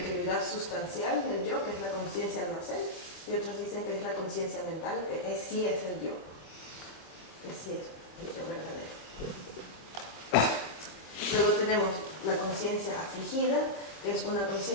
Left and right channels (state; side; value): late; right; 25 ms